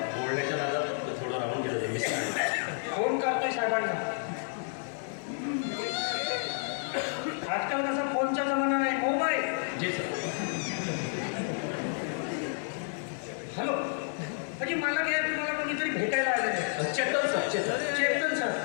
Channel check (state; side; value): silent; right; 57 dB below the other